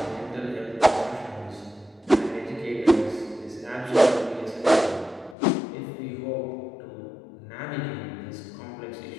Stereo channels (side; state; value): right; drops out; at 5.4 s